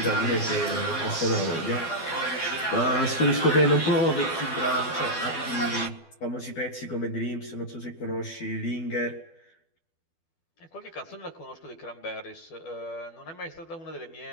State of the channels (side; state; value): right; late; 12 ms